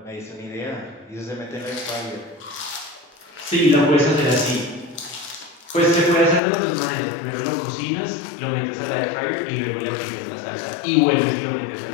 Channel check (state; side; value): drops out; right; at 6.4 s